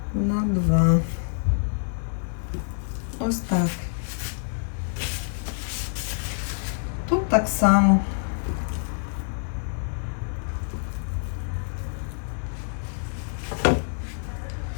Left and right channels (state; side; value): silent; right; digital silence